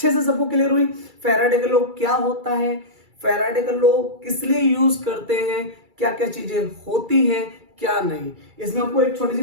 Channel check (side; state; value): left; late; 2.3 ms